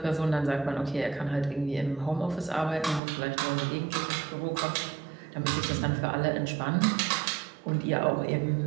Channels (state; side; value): drops out; left; at 3.0 s